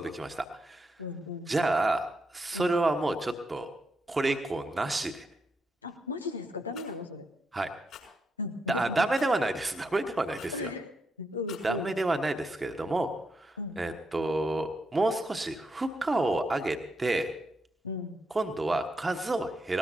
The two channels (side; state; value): both; normal; correlation 0.82